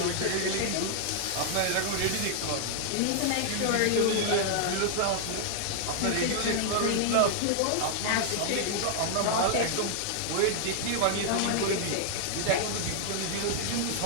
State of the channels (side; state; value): both; different; correlation -0.01